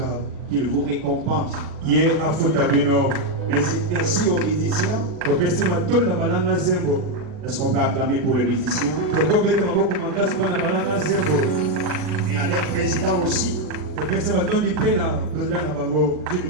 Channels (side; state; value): left; late; 40 ms